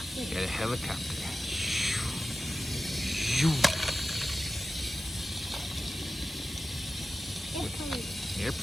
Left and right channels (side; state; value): both; normal; correlation 0.94